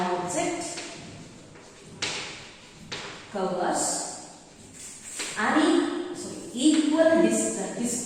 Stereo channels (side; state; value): both; identical; correlation 1.00